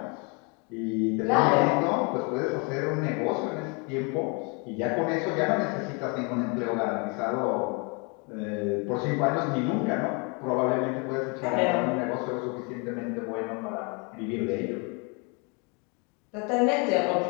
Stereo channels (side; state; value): right; quieter; 32.8 dB